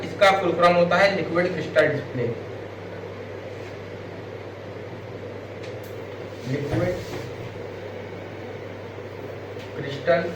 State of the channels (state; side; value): identical; both; correlation 1.00